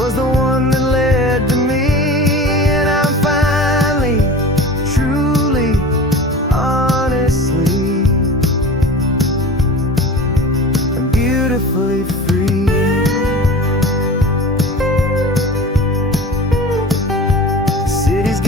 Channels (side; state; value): both; normal; correlation 0.35